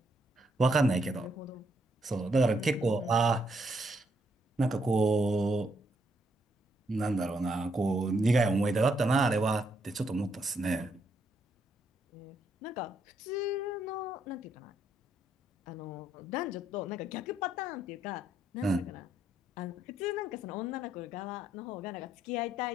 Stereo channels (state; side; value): normal; both; correlation 0.74